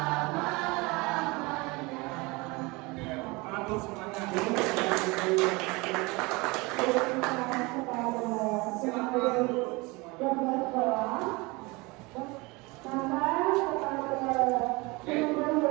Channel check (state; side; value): quieter; left; 25.0 dB